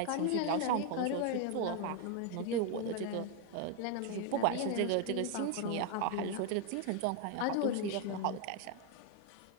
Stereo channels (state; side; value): different; both; correlation 0.01